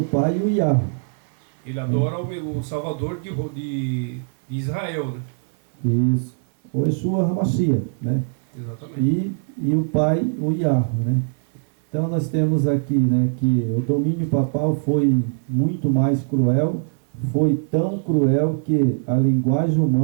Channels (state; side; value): silent; left; digital silence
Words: Pai e o Yahweh. Ele adora o Salvador de Israel, né? Isso. O Yeshua HaMashiach, né? Exatamente. E o Pai, o Yahweh, né? Então nós temos aqui, né, que o domínio papal foi muito mais cruel, foi tão cruel que a linguagem